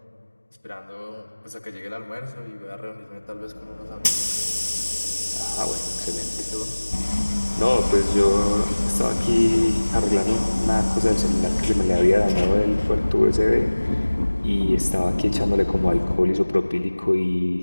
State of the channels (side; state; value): both; inverted; correlation -1.00